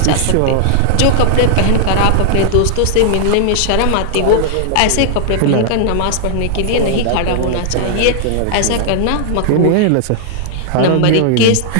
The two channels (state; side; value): different; both; correlation -0.01